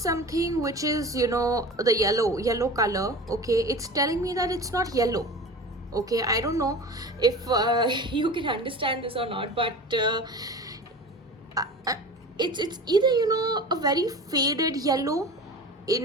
which is, you know, the yellow color. Okay, it's telling me that it's not yellow. Okay, I don't know if you can understand this or not, but it's either, you know, a very faded yellow,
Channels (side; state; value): both; normal; correlation 0.35